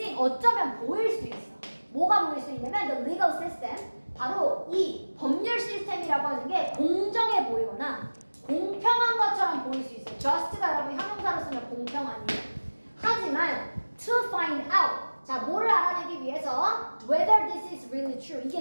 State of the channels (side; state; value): both; inverted; correlation -1.00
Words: 어쩌면 보일 수 있어. 뭐가 보일 수 있냐면 the legal system, 바로 이 법률 시스템이라고 하는 게 공정해 보이거나 공평한 것처럼 보일 수 있어요. just가 여러분 형용사로 쓰면 공평하니에요. 하지만 to find out, 자, 뭐를 알아내기 위해서 whether this is really true,